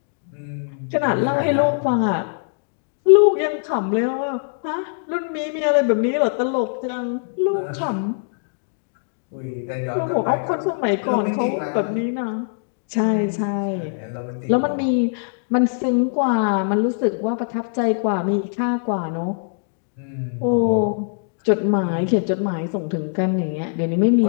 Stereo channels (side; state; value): right; silent; digital silence